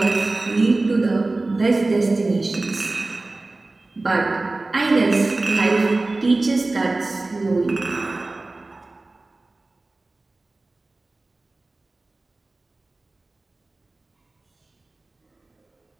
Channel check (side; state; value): left; quieter; 3.1 dB